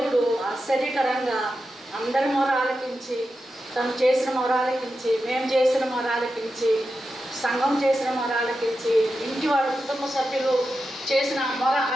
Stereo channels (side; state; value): both; normal; correlation 0.90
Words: ఆశ్చర్యకరంగా అందరి మొర ఆలకించి, తను చేసిన మొర ఆలకించి, మేము చేసిన మొర ఆలకించి, సంఘం చేసిన మొర ఆలకించి, ఇంటి వాళ్ళ కుటుంబ సభ్యులు చేసిన మొర